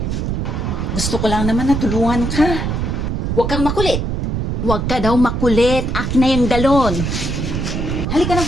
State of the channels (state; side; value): noise; right; rumble, 1 dB below the sound